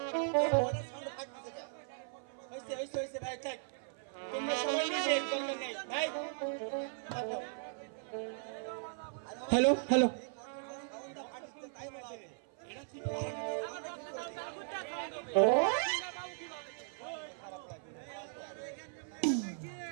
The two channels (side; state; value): left; silent; 53 dB below the other